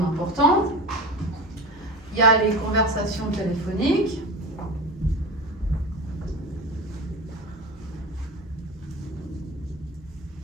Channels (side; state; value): both; normal; correlation 0.29